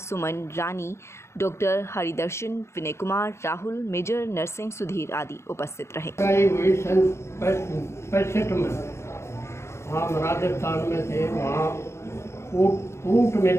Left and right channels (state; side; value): late; right; 0.13 ms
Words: रानी, डॉक्टर हरिदर्शन, विनय कुमार, राहुल, मेजर नरसिंह, सुधीर आदि उपस्थित रहे। सन 65 में हम राजस्थान में थे, वहाँ ऊँट ऊँट